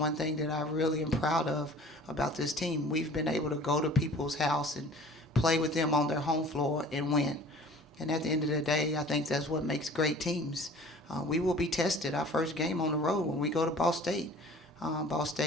thing that I really am proud of about this team. We've been able to go to people's house and play with them on their home floor and win. And at the end of the day, I think that's what makes great teams. We will be tested our first game on the road when we go to Ball State. Ball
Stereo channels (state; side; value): normal; both; correlation 0.46